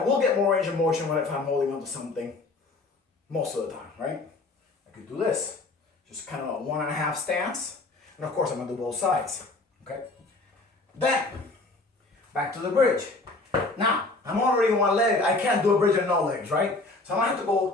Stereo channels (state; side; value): quieter; right; 3.3 dB